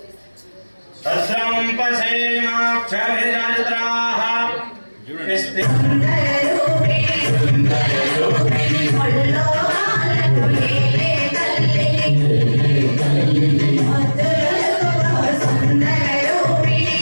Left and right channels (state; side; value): inverted; both; correlation -1.00